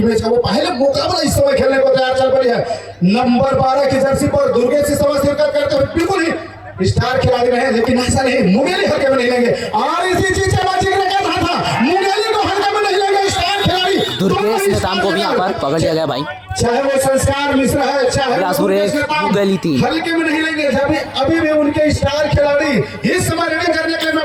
मैच का वो पहले मुकाबला इस समय खेलने को तैयार चल पड़ी है। नंबर 12 की जर्सी पर दुर्गेश से समय शिरकत करते हुए बिल्कुल ही स्टार खिलाड़ी रहे, लेकिन ऐसा नहीं मुगेली हल्के में नहीं लेंगे और इसी चीज का जिक्र कर रहा था, मुगेली को हल्के में नहीं लेंगे स्टार खिलाड़ी। दुर्गेश नेताम को भी यहाँ पर पकड़ लिया गया भाई, चाहे वो संस्कार मिश्रा है चाहे मुगेली थी, हल्के में नहीं लेंगे। जब अभी भी उनके स्टार खिलाड़ी इस समय रेडिंग करने के लिए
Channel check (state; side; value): identical; both; correlation 1.00